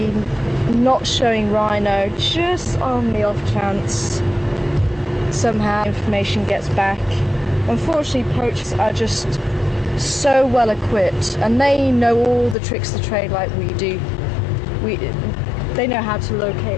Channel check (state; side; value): drops out; right; at 12.6 s